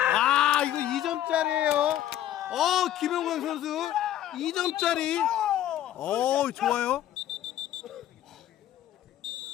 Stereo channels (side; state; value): right; quieter; 12.4 dB